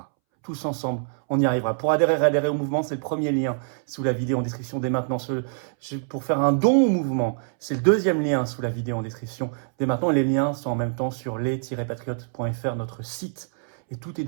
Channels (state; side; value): silent; left; 62 dB below the other